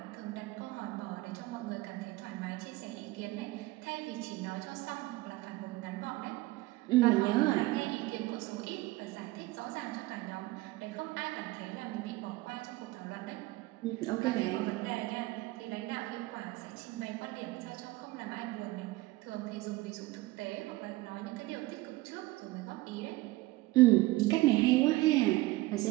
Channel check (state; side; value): quieter; left; 19.8 dB